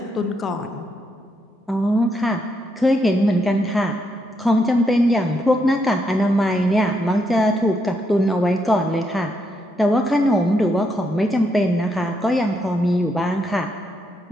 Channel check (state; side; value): normal; both; correlation 0.79